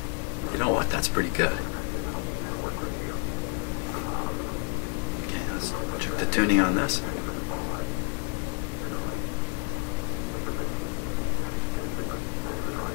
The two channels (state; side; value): quieter; right; 32.3 dB